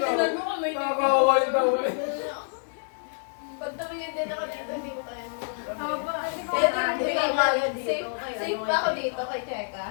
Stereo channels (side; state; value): right; silent; digital silence